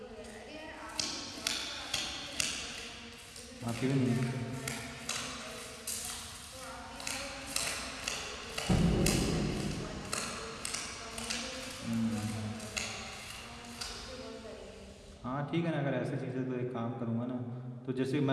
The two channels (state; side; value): identical; both; correlation 1.00